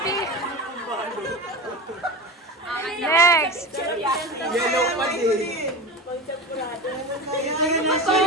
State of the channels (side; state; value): both; normal; correlation 0.25